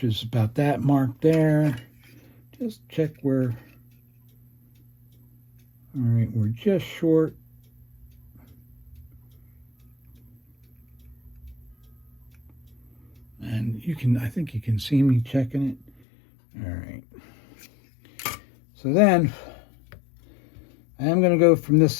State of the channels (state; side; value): drops out; right; at 15.9 s